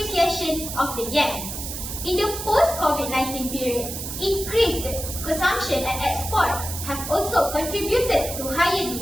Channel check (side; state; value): right; noise; hiss, 7 dB below the sound